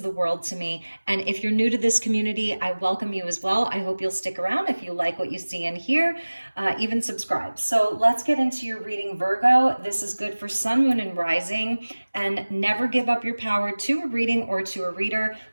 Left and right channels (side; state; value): both; inverted; correlation -1.00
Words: the world to me. And if you're new to this community, I welcome you as well. I hope you'll stick around if you like what you see and hear, even subscribe. So let's get into your reading, Virgo. This is good for sun, moon, and rising. And never give up your power to a reading or to a reader.